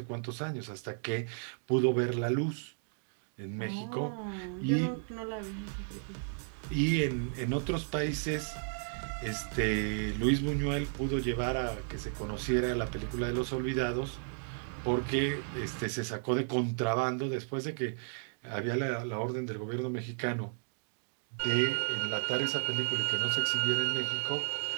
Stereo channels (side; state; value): left; silent; digital silence